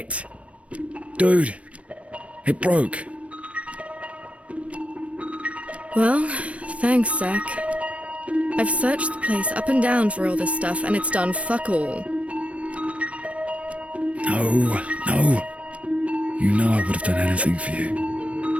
Dude, it broke. Well, thanks, Zach. I've searched the place up and down for all this stuff, and it's done fuck all. No. You know I would have done anything for you.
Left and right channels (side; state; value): left; late; 0.063 ms